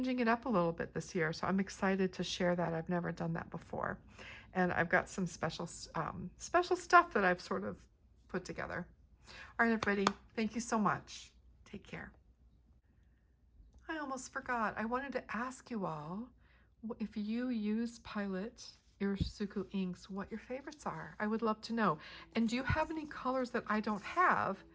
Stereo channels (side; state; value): both; identical; correlation 1.00